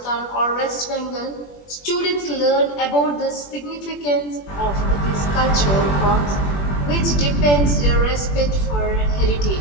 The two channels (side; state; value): right; late; 21 ms